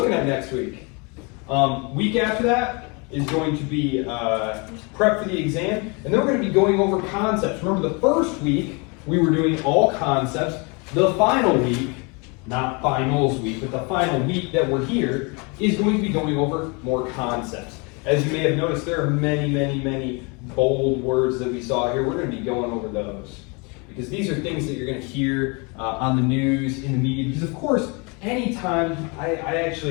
at next week. Week after that is going to be prep for the exam, and then we're going to be going over concepts. Remember, the first week we were doing all concepts. The final week, not finals week, but the final week that we're here is going to be going over more concepts. As you may have noticed, there are many bold words that we saw here. We're going to be going over those because these are things that you're going to hear on the news, in the media. Because of course, anytime, I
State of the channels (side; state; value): right; quieter; 31.0 dB